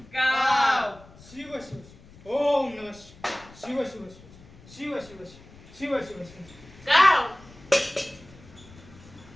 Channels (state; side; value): noise; left; rumble, 22 dB below the sound